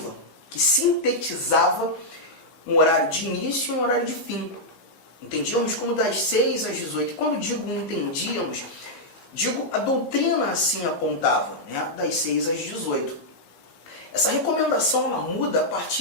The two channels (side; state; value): right; late; 15 ms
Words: que sintetizava um horário de início e um horário de fim. Entendíamos como das 6 às 18. E quando digo entendíamos, digo a doutrina assim apontava, né? Das 6 às 18. Essa recomendação ela muda a